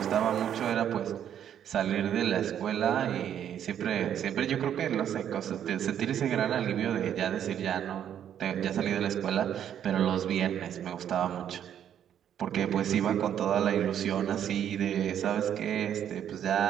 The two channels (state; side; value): quieter; left; 9.7 dB